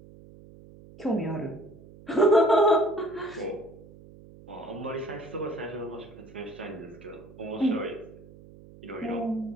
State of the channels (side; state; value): right; noise; hum, 20 dB below the sound